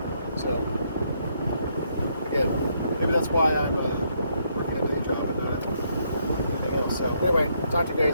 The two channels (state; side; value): inverted; both; correlation -0.73